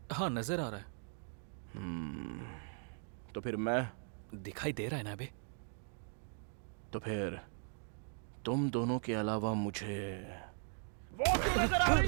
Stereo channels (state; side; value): silent; left; 52 dB below the other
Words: हाँ, नजर आ रहा है। तो फिर मैं दिखाई दे रहा है ना अभी? तो फिर तुम दोनों के अलावा मुझे वो क्यों नजर आ रही